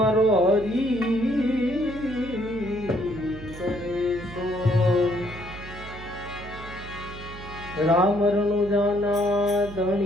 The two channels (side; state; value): right; noise; hum, 13 dB below the sound